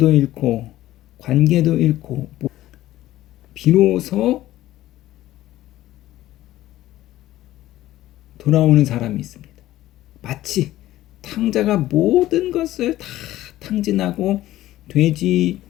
잃고 관계도 잃고 비로소 돌아오는 사람이 있습니다. 마치 탕자가 모든 것을 다 탕진하고 돼지가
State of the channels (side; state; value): right; quieter; 14.9 dB